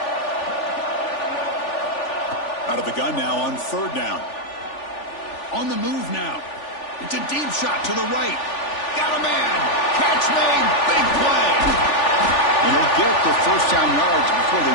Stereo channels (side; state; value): right; late; 3.4 ms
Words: Out of the gun now on 3rd down. On the move now. It's a deep shot to the right. Got a man. Catch made. Big play. And he'll get the first down yards before